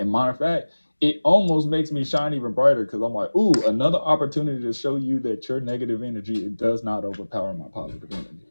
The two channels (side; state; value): both; inverted; correlation -1.00